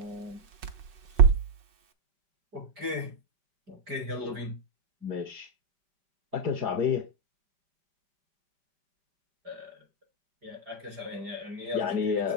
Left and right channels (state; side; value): late; left; 5.4 ms